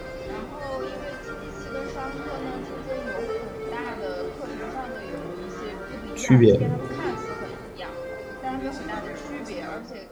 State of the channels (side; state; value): both; identical; correlation 1.00